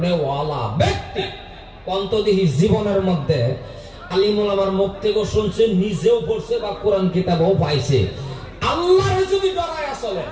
ওয়ালা ব্যক্তি কন্তদিহি জীবনের মধ্যে আলিমুল আমার মুখ থেকে শুনছে নিজেও পড়ছে বা কোরআন কিতাবও পাইছে আল্লাহরে যদি ডরায় চলে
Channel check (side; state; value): both; identical; correlation 1.00